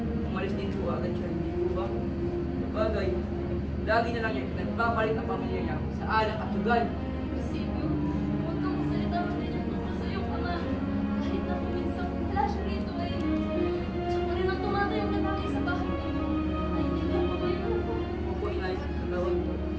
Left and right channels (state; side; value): identical; both; correlation 1.00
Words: umalis din po agad siya. Hindi po ba? Sabagay, lagi na lang niya nagpapalit ang pamilya niya sa alak at sugal. Silvio, huwag kang magsalita ng ganyan tungkol sa iyong ama. Kahit na kuminsan wala siya rito ay siya pa rin ang tumatayong lalaki sa bahay ninyo. Naintindihan mo ba yun? Opo, Inay. Gawin po.